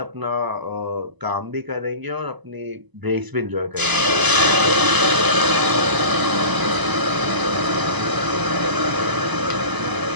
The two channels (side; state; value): left; late; 1.0 ms